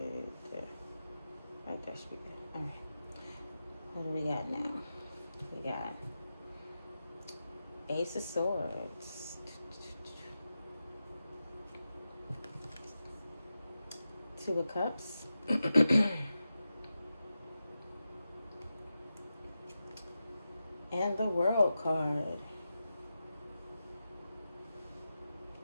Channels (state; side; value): inverted; both; correlation -0.91